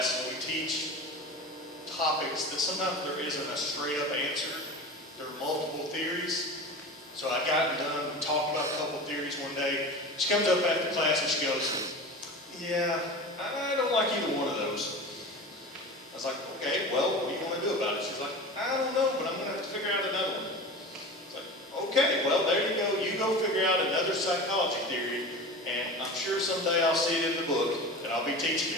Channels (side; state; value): both; normal; correlation 0.32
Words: we teach topics that sometimes there isn't a straight up answer. There are multiple theories. So I got done, talked about a couple of theories one day. She comes up after class and she goes, yeah, I don't like either one of those. I was like, okay, well, what do you want to do about it? She's like, I don't know, but I'm going to have to figure out another one. Okay, well, there you go. You go figure out another psychology theory, and I'm sure someday I'll see it in the book, and I'll be teaching